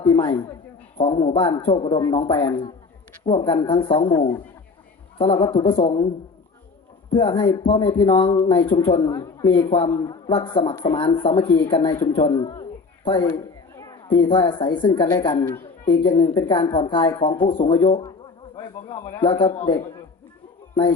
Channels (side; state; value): right; quieter; 4.3 dB